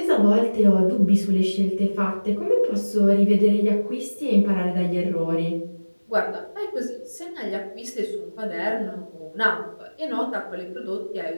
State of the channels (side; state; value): both; inverted; correlation -1.00